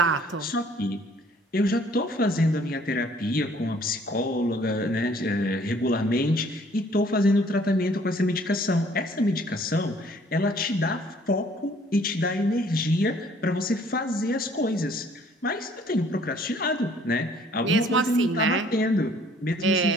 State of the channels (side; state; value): both; normal; correlation 0.58